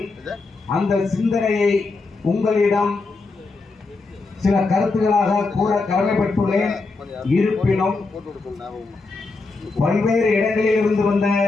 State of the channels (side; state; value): right; quieter; 3.8 dB